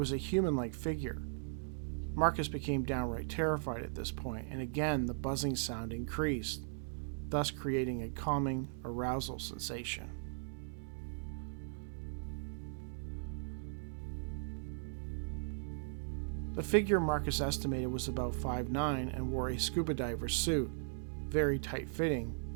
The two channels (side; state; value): left; silent; digital silence